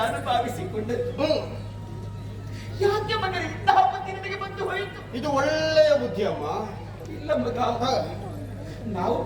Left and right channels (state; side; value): identical; both; correlation 1.00